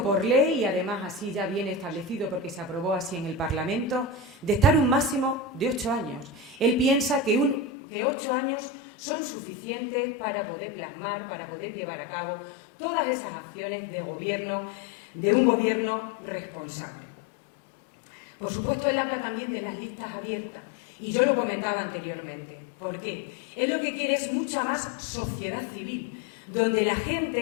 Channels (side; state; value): right; drops out; at 7.7 s